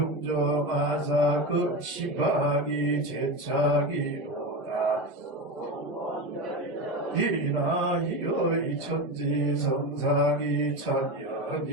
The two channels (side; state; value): both; normal; correlation 0.21